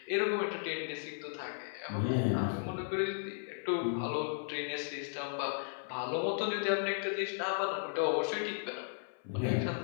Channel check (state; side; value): silent; right; 54 dB below the other